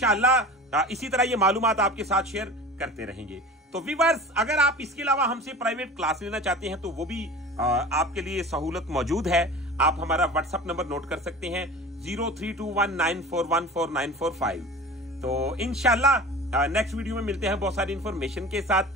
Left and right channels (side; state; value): both; normal; correlation 0.37